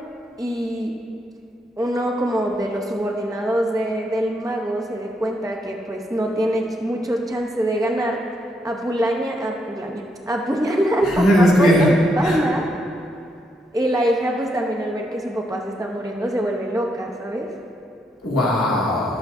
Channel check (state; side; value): normal; both; correlation 0.78